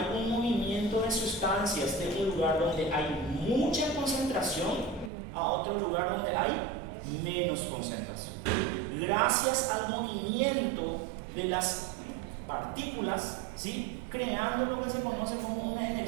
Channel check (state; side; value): drops out; left; at 5.1 s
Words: un movimiento de sustancias de un lugar donde hay mucha concentración a otro lugar donde hay menos concentración. Gracias al movimiento de las partículas ¿sí? Creando lo que se conoce como una